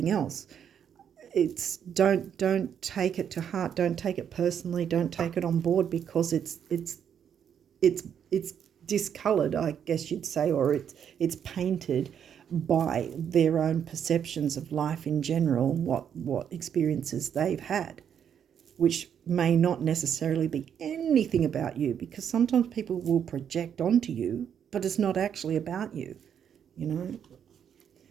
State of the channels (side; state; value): left; quieter; 8.4 dB